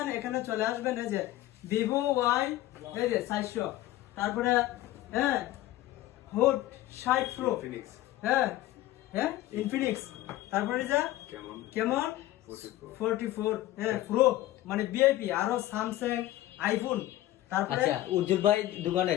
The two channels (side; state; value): right; quieter; 15.3 dB